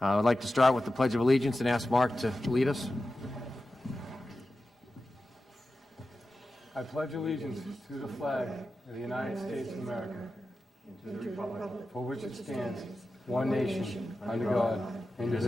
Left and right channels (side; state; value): both; normal; correlation 0.93